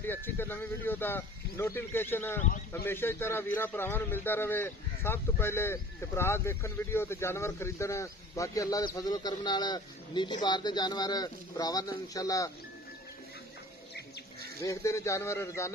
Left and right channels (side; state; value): both; normal; correlation 0.46